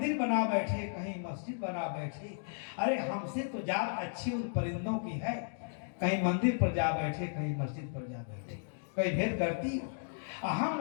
बना बैठे, कहीं मस्जिद बना बैठे। अरे हमसे तो जात अच्छी उन परिंदों की है, कहीं मंदिर पर जा बैठे, कहीं मस्जिद पर जा बैठे। कहीं भेद करती हो। हम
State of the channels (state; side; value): silent; right; digital silence